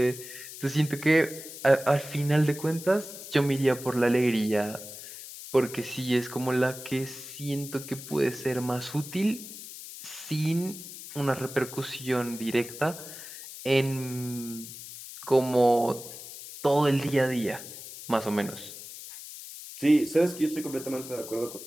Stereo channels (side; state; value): left; noise; hiss, 13 dB below the sound